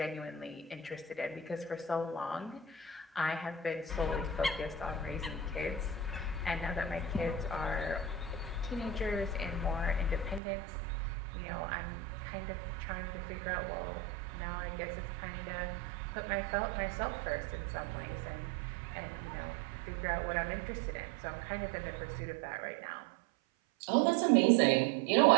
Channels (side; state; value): left; drops out; at 10.4 s